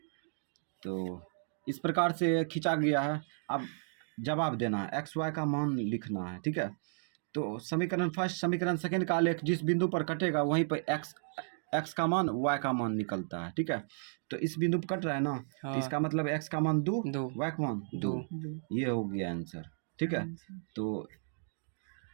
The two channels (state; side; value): silent; left; digital silence